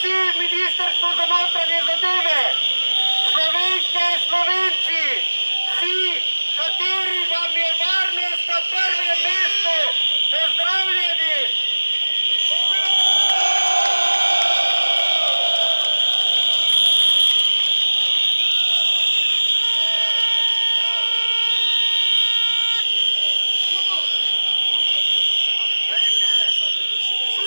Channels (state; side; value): inverted; both; correlation -1.00